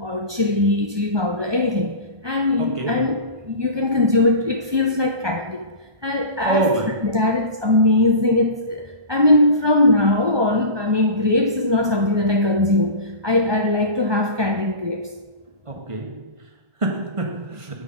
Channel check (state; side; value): late; left; 1.2 ms